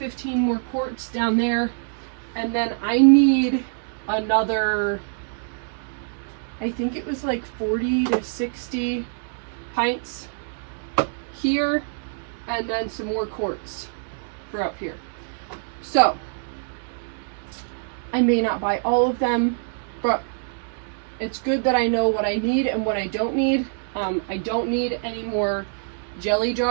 more quarts down there, and then I need another, I think it was like 40 to 60 pints here, and then some more quarts for up here. So I may not buy all of them, but it's good that I know what I need and what I don't need. I don't need any more jelly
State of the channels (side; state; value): left; silent; digital silence